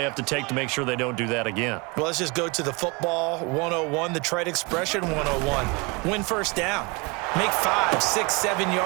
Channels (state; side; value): quieter; left; 27.6 dB